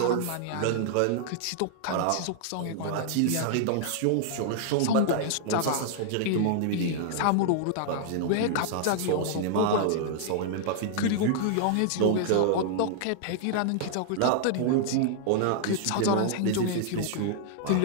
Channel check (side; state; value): both; different; correlation -0.01